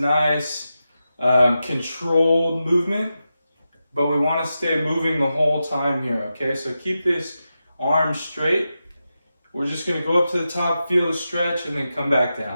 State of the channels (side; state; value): both; inverted; correlation -0.90